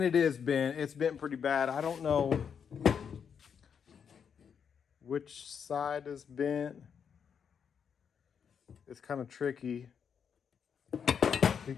it is bent. It's bent pretty bad. I don't know which side is bent. It's kind of tricky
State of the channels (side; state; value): right; quieter; 7.2 dB